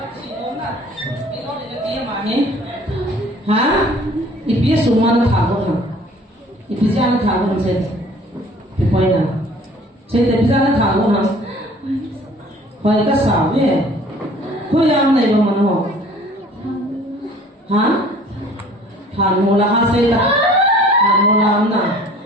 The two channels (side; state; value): both; normal; correlation 0.51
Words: Hả? Ipia suma na thago na. Ipia na thago na sen. Ipoi na. Sen ipia na thago na. Hoi ka sa ve. Hoi am nei ba man ho. Hả? Than mo la ha se ta. Than mo la am na.